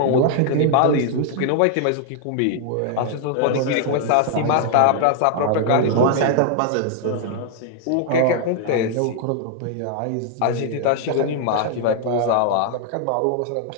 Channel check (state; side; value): different; both; correlation 0.00